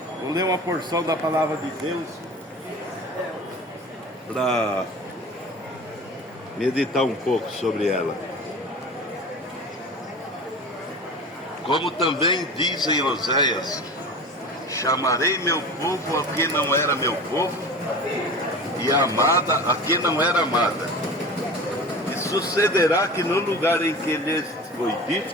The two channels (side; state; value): both; normal; correlation 0.35